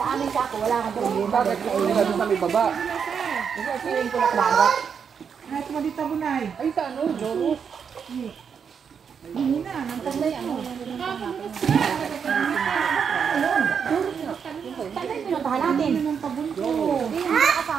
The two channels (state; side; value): quieter; left; 6.8 dB